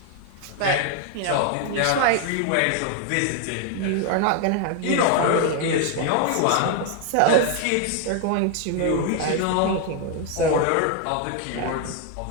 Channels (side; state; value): both; different; correlation 0.01